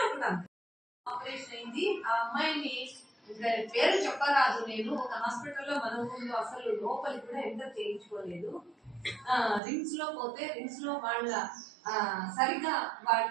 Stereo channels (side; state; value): left; drops out; at 9.6 s